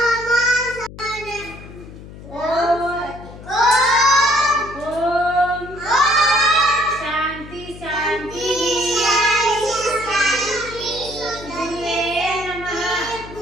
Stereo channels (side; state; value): left; noise; hum, 16 dB below the sound